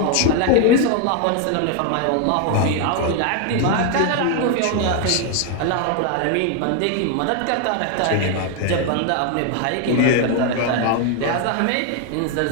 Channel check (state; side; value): different; both; correlation 0.01